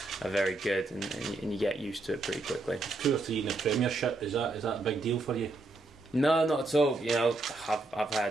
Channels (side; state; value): left; quieter; 3.1 dB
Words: are very good, and you get used to it pretty quickly. 2 or 3 in the Premiership, is that a big deal for you? No, not at all. You know, I've